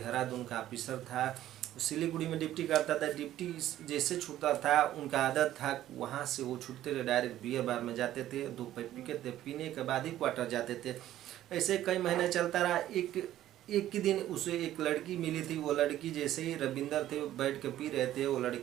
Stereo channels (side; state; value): left; quieter; 13.1 dB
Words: का ऑफिसर था। सिलीगुड़ी में ड्यूटी करता था। ड्यूटी जैसे छूटता था, उनका आदत था वहाँ से वो छूटते थे डायरेक्ट बियर बार में जाते थे। 2 पैक पीते थे, पीने के बाद ही क्वार्टर जाते थे। ऐसे कई महीने चलता रहा। एक ही दिन उसे एक लड़की मिली थी। वो लड़की जैसे ही रविंदर थे बैठ के पी रहे थे, वो